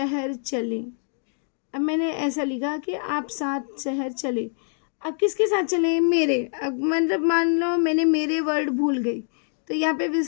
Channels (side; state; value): right; silent; 61 dB below the other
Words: चले। अब मैंने ऐसा लिखा कि आप साथ शहर चले। अब किसके साथ चले, मेरे। अब मतलब मान लो मैंने मेरे वर्ड भूल गई, तो यहाँ पे